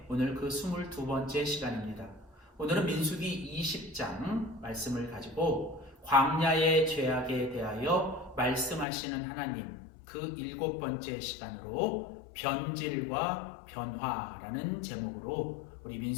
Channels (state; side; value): drops out; right; at 8.8 s